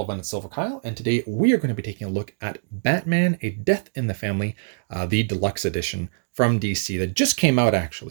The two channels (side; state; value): left; silent; digital silence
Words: everyone, it's Silver Kyle, and today we are going to be taking a look at Batman: A Death in the Family, the deluxe edition from DC that just came out